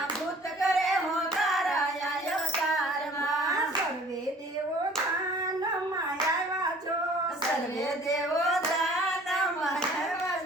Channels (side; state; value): both; normal; correlation 0.51